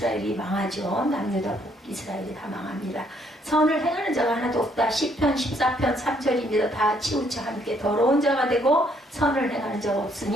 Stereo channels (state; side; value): normal; both; correlation 0.68